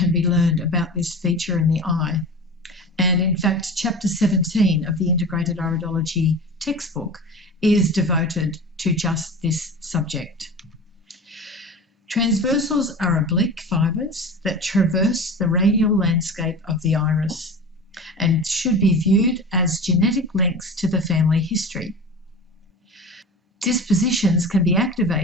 be learned about this feature in the eye. And in fact, Chapter 17 of the Integrated Iridology textbook is devoted to just this subject. Transversals are oblique fibres that traverse the radial landscape of the iris and should be viewed as genetic links to the family history. Dispositions can be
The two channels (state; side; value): normal; both; correlation 0.33